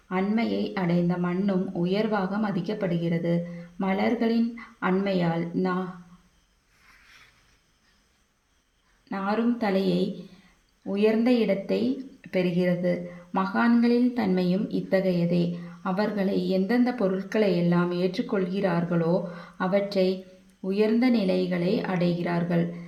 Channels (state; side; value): identical; both; correlation 1.00